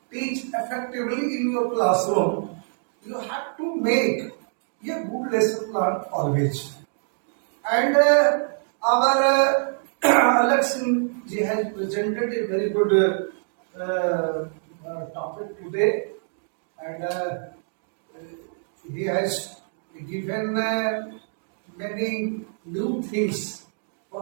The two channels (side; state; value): left; silent; digital silence